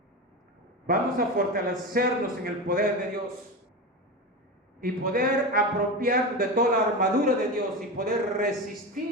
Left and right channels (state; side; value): normal; both; correlation 0.22